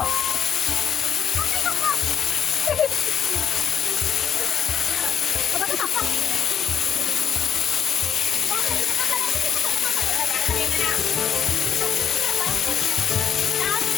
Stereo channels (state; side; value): quieter; right; 8.4 dB